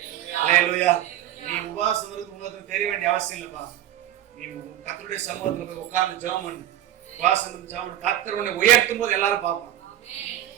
அல்லேலூயா. நீ உபவாசம் இருக்கு உங்களுக்கு தெரிய வேண்டிய அவசியம் இல்லப்பா. நீ கர்த்தருடைய சமூகத்துல போய் உட்கார்ந்து ஜெபம் பண்ணு. உபவாசம் இருந்து ஜெபம் பண்ணு. கர்த்தர் உன்னை உயர்த்தும் போது எல்லாரும் பார்ப்பாங்க.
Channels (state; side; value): quieter; left; 12.4 dB